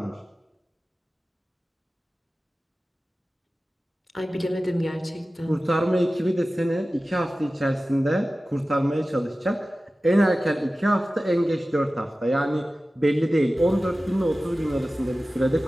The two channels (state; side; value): normal; both; correlation 0.96